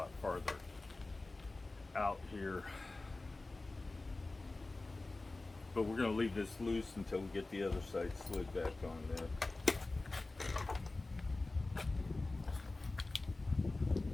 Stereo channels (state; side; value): quieter; right; 3.2 dB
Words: farther out here, but we're going to leave this loose until we get the other side slid back on there.